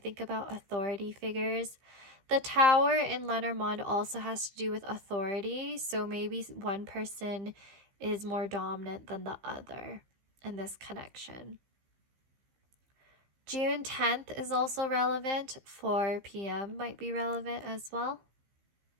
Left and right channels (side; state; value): left; late; 15 ms